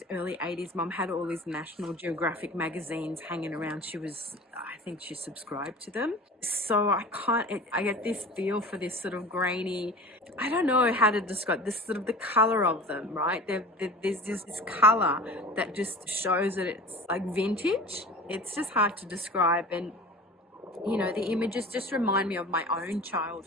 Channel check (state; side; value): normal; both; correlation 0.38